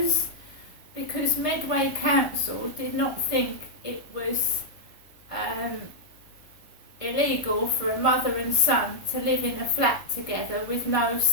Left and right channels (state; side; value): late; right; 1.5 ms